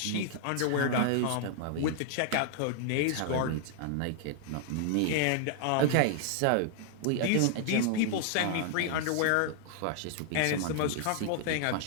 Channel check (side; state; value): both; different; correlation 0.00